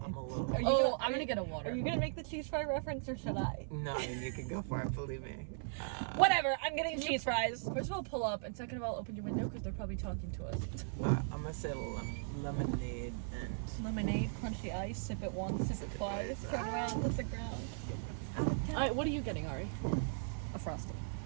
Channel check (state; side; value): silent; left; 52 dB below the other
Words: you Oh, gonna- I'm gonna get a water. Are you gonna make the cheese fry reference or should I? No, I mean you can go for it. Believe me. Whatever. I'm getting Can you- cheese fries. First of all, pull up, and second of all, open your window because they're probably talking to us. I'm gonna say lemonade and. Lemonade, crunchy ice. Sip it once, sip it twice. Turn around, touch the ground. What are you getting, Ari? A frosty.